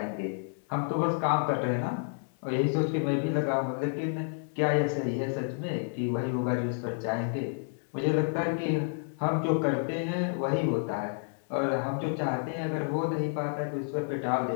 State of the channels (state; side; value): silent; right; 58 dB below the other